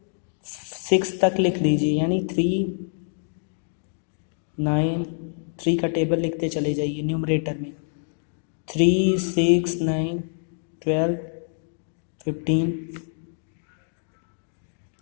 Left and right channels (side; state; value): right; silent; digital silence